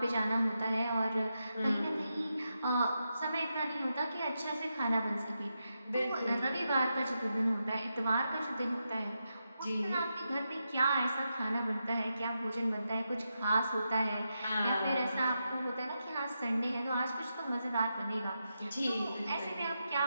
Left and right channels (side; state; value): both; inverted; correlation -0.86